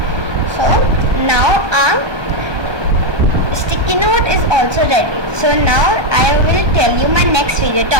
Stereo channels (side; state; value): left; late; 1.2 ms